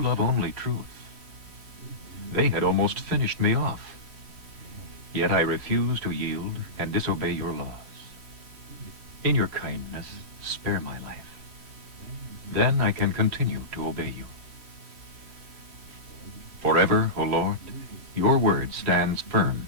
love only truth. They had almost finished me off. Yet I refuse to yield and disobey your laws. In your kindness, spare my life. Then I can continue to obey you. Forever, O Lord, your word stands firm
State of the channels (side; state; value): left; late; 3.1 ms